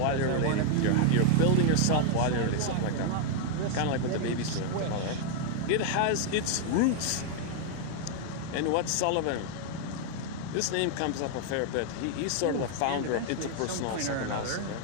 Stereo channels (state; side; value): different; both; correlation 0.00